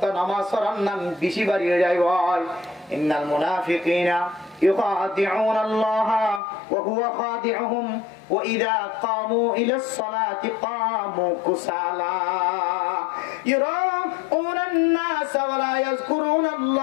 নামাজ পড়ার নাম বেশি বাড়িয়ে যায় ভাই ইন্নাল মুনাফিকিনা يخادعون الله وهو خادعهم وإذا قاموا إلى الصلاة قاموا كسالى يراءون الناس ولا يذكرون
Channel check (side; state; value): right; drops out; at 6.4 s